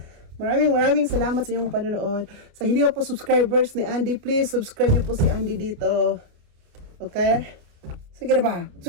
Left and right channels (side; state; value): left; late; 29 ms